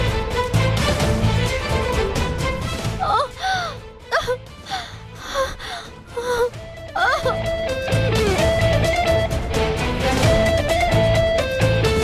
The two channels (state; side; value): identical; both; correlation 1.00